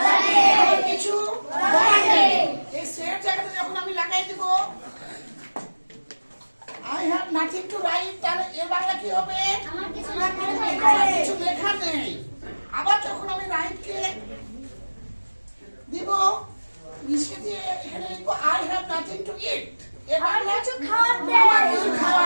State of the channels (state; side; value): inverted; both; correlation -1.00